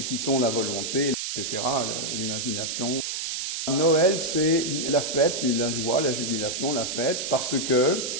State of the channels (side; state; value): right; noise; hiss, 3 dB below the sound